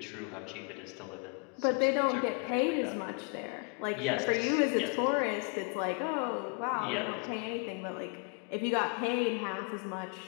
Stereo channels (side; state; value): right; quieter; 35.0 dB